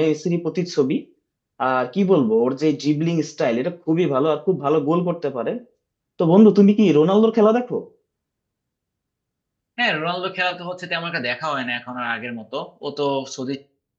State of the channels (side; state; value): both; identical; correlation 1.00